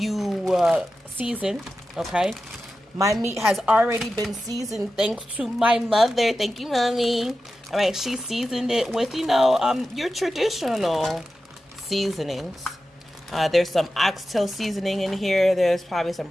season, okay? My meat has already been seasoned thanks to my mother. Thank you, Mommy. All right, she seasoned it with, you know, your traditional seasonings. There's some oxtail seasoning in here. There's probably some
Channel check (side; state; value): both; normal; correlation 0.93